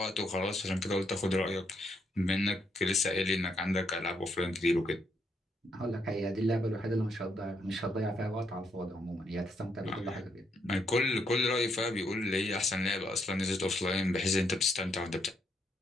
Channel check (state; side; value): normal; both; correlation 0.75